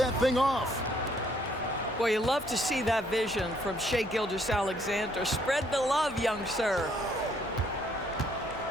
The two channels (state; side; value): normal; both; correlation 0.67